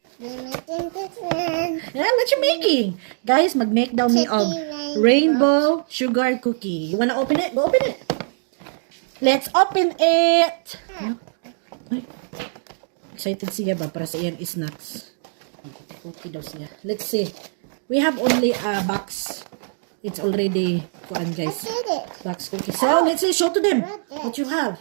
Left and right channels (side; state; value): left; silent; digital silence